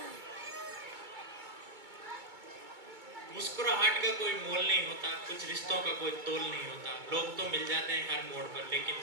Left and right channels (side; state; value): left; late; 2.2 ms